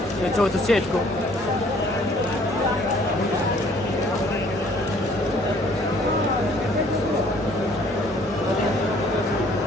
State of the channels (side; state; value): both; normal; correlation 0.59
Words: यो चौथो सेटको